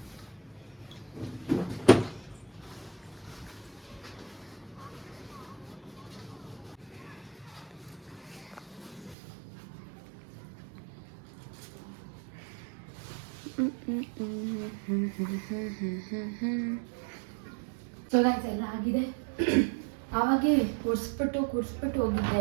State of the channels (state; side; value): drops out; left; at 9.2 s